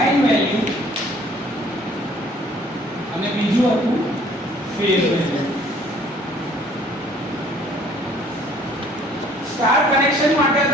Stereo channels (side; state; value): both; normal; correlation 0.57